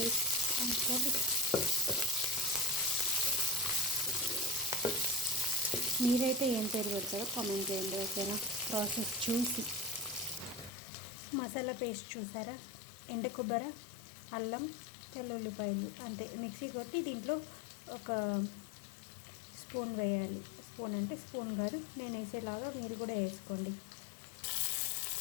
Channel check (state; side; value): drops out; right; at 10.7 s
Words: అనుకోండి. మీరైతే ఏం పేరు పెడతారో కామెంట్ చేయండి, ఓకేనా? ప్రాసెస్ చూసి. మసాలా పేస్ట్ చూసారా? ఎండు కొబ్బరి, అల్లం, తెల్లుల్లిపాయలు అంతే మిక్సీ కొట్టి దీంట్లో ఒక స్పూన్ వేయాలి. స్పూన్ అంటే స్పూన్ కాదు, నేను వేసేలాగా మీరు కూడా వేసుకోండి.